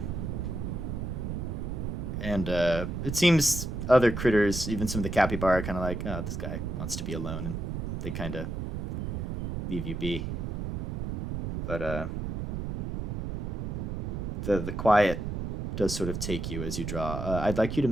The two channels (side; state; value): right; noise; rumble, 3 dB below the sound